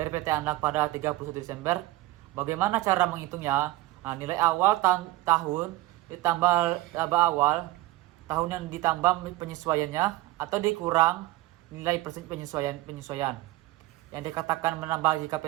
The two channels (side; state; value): left; quieter; 18.0 dB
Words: PT anak pada 31 Desember. Bagaimana cara menghitungnya? Nah, nilai awal tahun ditambah laba awal tahun yang ditambah penyesuaiannya atau dikurang nilai penyesuaian. Yang dikatakan menambah jika